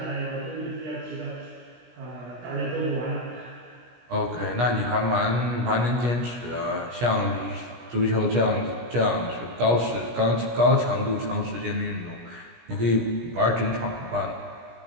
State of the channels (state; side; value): late; left; 17 ms